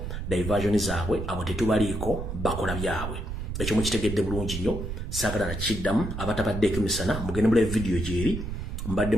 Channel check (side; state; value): right; noise; rumble, 5 dB below the sound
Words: diversion zaabwe abo tetubaliiko bakola byabwe ekyo mukitegedde bulungi nnyo sagala na chiddamu abatabadde ekimisana mugende mule video jeri mbadde